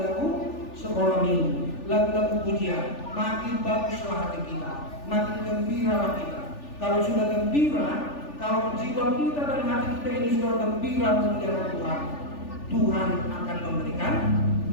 sekolah minggu, lagu-lagu pujian. Makin baguslah hati kita, makin gembiralah kita. Kalau sudah gembira, kalau jiwa kita dan hati kita ini sudah gembira memuliakan Tuhan, Tuhan akan memberikan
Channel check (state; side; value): late; right; 3.4 ms